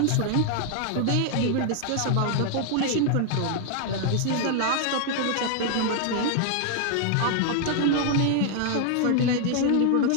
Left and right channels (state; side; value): different; both; correlation 0.00